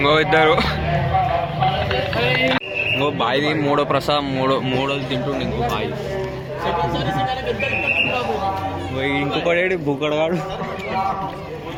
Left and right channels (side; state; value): both; identical; correlation 1.00